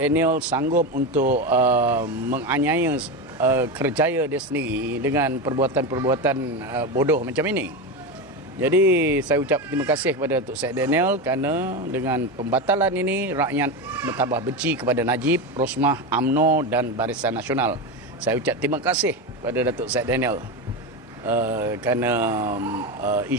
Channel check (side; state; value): both; normal; correlation 0.17